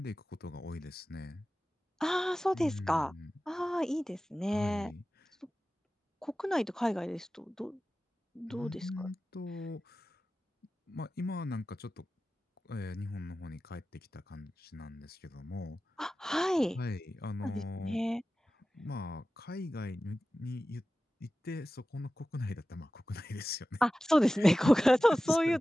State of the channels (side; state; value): both; normal; correlation 0.95